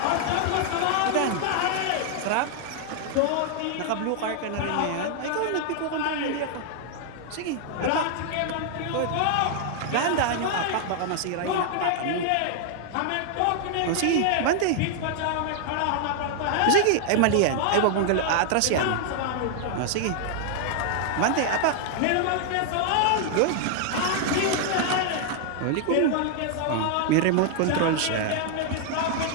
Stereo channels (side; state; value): both; different; correlation 0.00